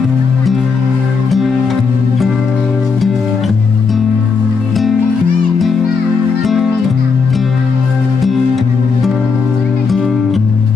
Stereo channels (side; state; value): right; quieter; 5.1 dB